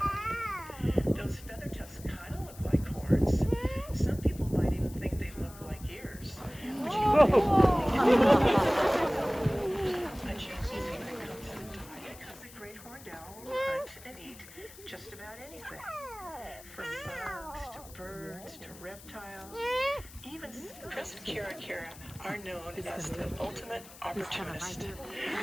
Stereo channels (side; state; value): left; noise; hiss, 19 dB below the sound